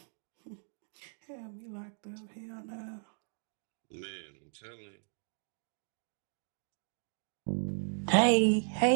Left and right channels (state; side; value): silent; left; 54 dB below the other